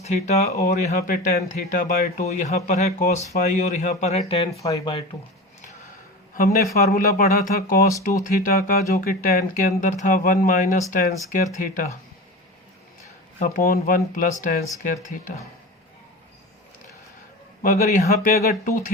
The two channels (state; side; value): normal; both; correlation 0.29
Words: θ और यहाँ पे tan θ/2, यहाँ पर है cos φ और यहाँ पर है tan φ/2। हमने फार्मूला पढ़ा था cos 2θ का, जो कि tan के अंदर था 1 minus tan square theta upon 1 plus tan square theta. मगर यहाँ पे अगर